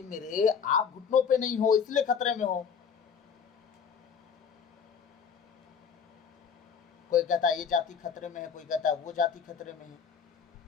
मेरे, आप घुटनों पे नहीं हो इसलिए खतरे में हो। कोई कहता है ये जाति खतरे में है, कोई कहता है वो जाति खतरे में है।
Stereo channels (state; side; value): quieter; right; 6.8 dB